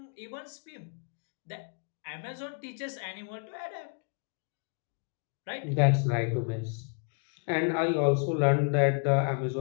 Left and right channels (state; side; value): quieter; right; 39.7 dB